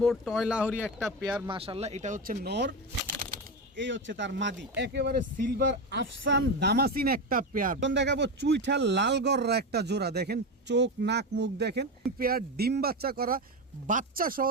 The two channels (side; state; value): both; normal; correlation 0.17